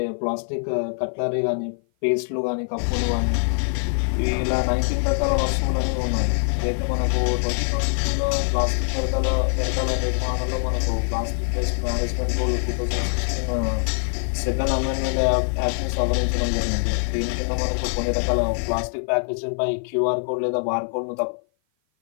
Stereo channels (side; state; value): right; silent; 55 dB below the other